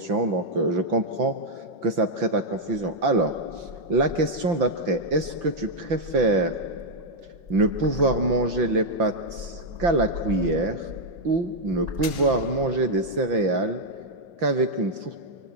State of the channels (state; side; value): late; left; 5.9 ms